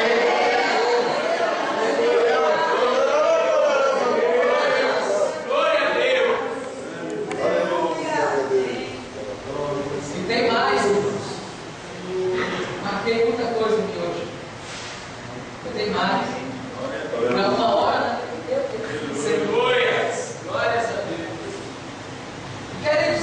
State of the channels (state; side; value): identical; both; correlation 1.00